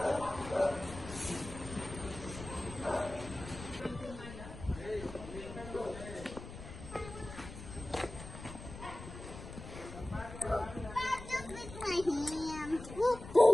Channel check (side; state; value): left; noise; rumble, 12 dB below the sound